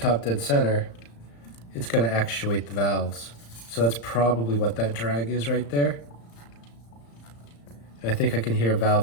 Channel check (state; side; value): late; right; 35 ms